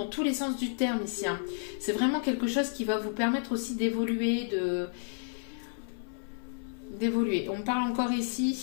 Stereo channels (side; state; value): right; silent; 57 dB below the other